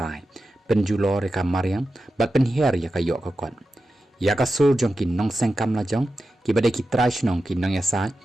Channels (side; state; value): both; normal; correlation 0.91